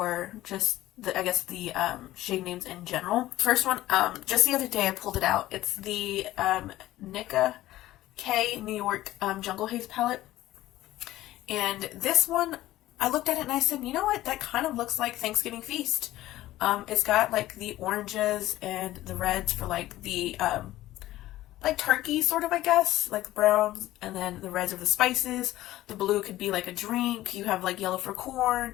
just I guess the shade names in general. First one, just the other day I pulled it out. It's the Nika K New York Jungle Haze palette. And this one, I looked at it and I said, you know what, that kind of looks like Thanksgiving feast. It's got like the oranges and the reds for like the like turkey sort of, I guess, like the browns, and then the reds are the spices. The blue could be like a drink. You have like yellow for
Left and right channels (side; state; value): right; quieter; 15.4 dB